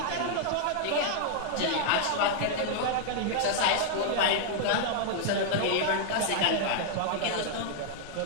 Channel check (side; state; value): both; different; correlation -0.01